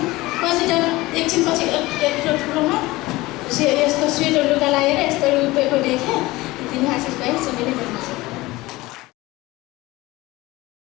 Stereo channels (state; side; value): quieter; right; 19.7 dB